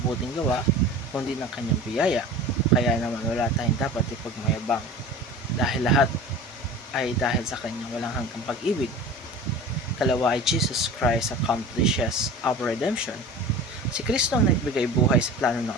gawa kundi ng kanyang biyaya. Kaya naman wala tayong dapat ipagmayabang dahil lahat ay dahil sa kanyang walang hanggang pag-ibig. Kalawa ay Jesus Christ accomplishes our redemption. Si Kristo ang nagbigay buhay sa plano ng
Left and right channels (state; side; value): normal; both; correlation 0.37